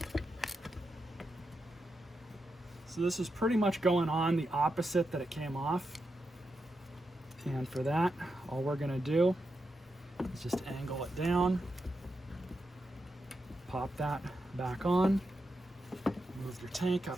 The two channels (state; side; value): normal; both; correlation 0.87